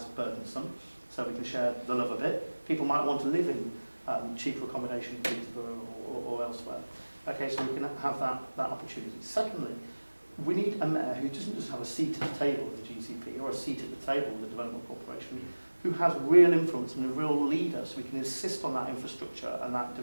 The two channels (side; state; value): both; inverted; correlation -1.00